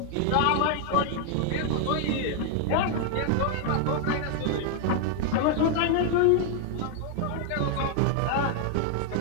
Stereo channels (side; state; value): both; different; correlation 0.00